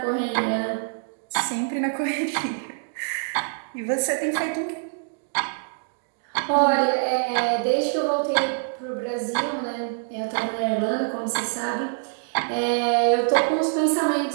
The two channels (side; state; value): left; silent; digital silence